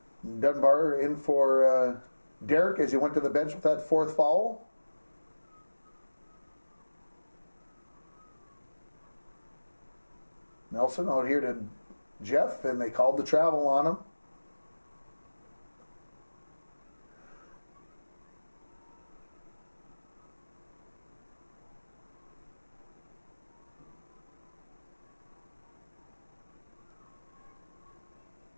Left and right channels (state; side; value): inverted; both; correlation -1.00